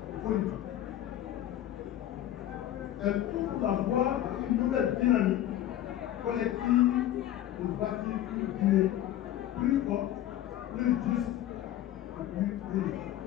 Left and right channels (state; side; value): quieter; right; 12.5 dB